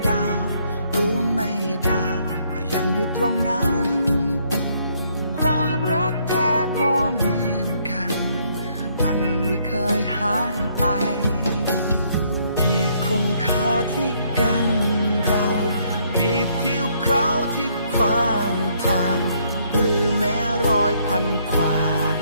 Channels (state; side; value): inverted; both; correlation -0.69